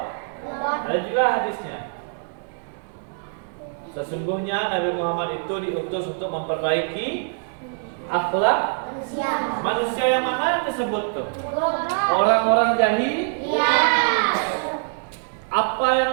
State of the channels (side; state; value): left; silent; 63 dB below the other